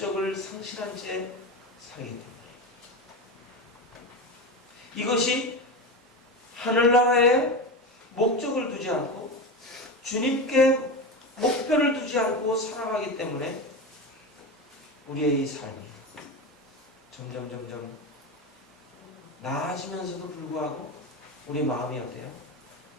상실한 채 살기 때문에 이것이 하늘나라에 목적을 두지 않고 주님께 목표를 두지 않고 살아가기 때문에 우리의 이 삶이 점점 나아지면서도 불구하고 우리 마음이 어때요?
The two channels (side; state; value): both; normal; correlation 0.21